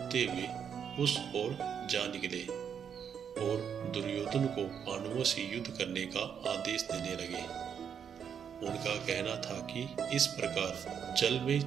हुए उस ओर जा निकले और दुर्योधन को पांडवों से युद्ध करने का आदेश देने लगे। उनका कहना था कि इस प्रकार जल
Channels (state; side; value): quieter; left; 7.8 dB